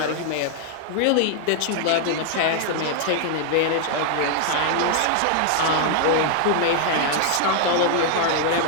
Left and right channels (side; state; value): both; different; correlation 0.00